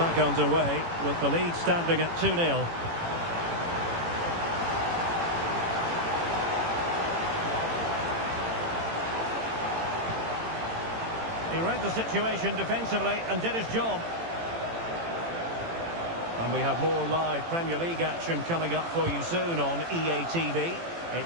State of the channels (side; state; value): left; late; 18 ms